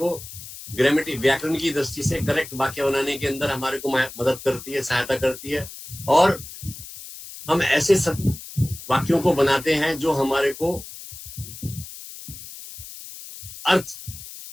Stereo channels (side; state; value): left; noise; hiss, 14 dB below the sound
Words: ग्रामेटिक, व्याकरण की दृष्टि से करेक्ट वाक्य बनाने के अंदर हमारे को मदद करती है, सहायता करती है. और हम ऐसे सब वाक्यों को बनाते हैं जो हमारे को अर्थ